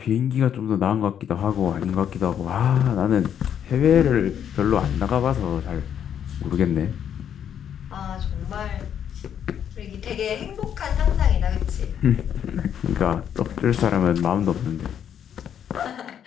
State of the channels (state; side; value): quieter; right; 9.1 dB